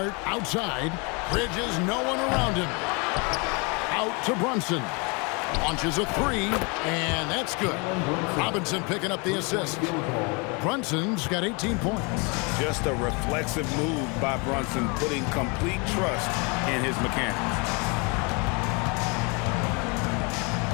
outside. Bridges, no one around him. Out to Brunson. Launches a 3, and that's good. Robinson picking up the assist. Brunson's got 18 points. Just a reflexive move by Brunson, putting complete trust in his mechanics.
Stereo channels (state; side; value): quieter; right; 30.4 dB